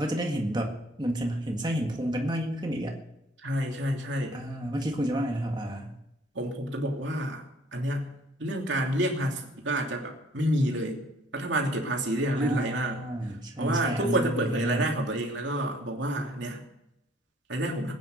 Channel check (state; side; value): normal; both; correlation 0.59